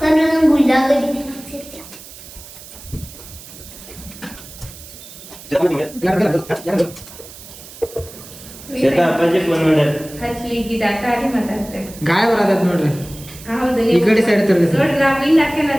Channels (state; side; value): noise; right; hiss, 17 dB below the sound